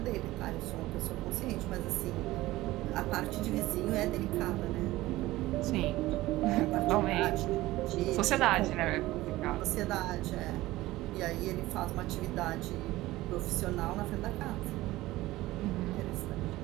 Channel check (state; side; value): quieter; left; 17.6 dB